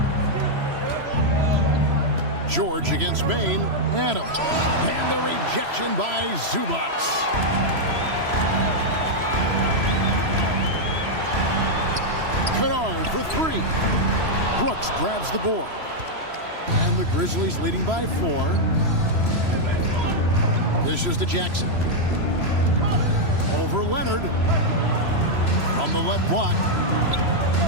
George against Bain. Adams. And the rejection by Zubac. Kennard for 3. Brooks grabs the board. And the Grizzlies leading by 4. This is to Jackson. Over Leonard. On the left block.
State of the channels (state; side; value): late; left; 3.0 ms